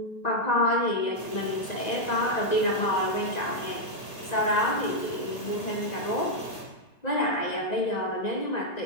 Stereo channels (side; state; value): right; late; 2.0 ms